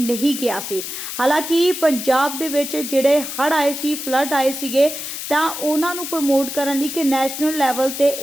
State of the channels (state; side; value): noise; left; hiss, 7 dB below the sound